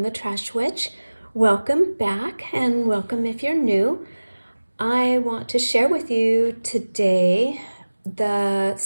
the Trash Witch. Welcome back and welcome if you're new. I want to share with you today the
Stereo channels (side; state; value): both; inverted; correlation -1.00